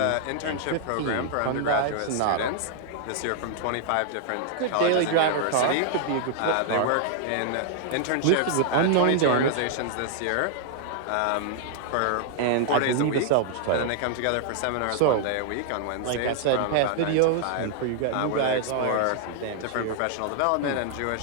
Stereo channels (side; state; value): both; different; correlation -0.01